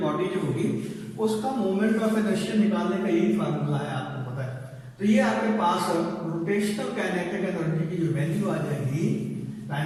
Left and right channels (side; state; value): both; identical; correlation 1.00